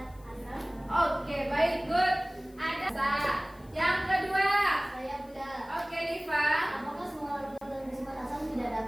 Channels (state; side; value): noise; left; hiss, 28 dB below the sound